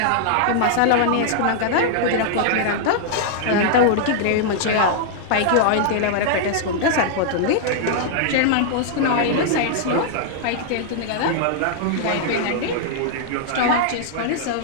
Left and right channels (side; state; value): both; different; correlation -0.01